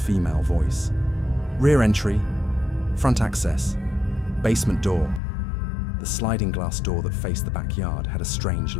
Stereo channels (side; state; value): right; drops out; at 5.2 s